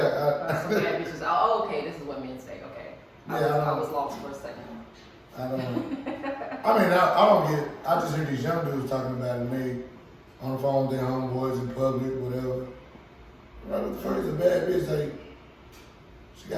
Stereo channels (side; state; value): both; identical; correlation 1.00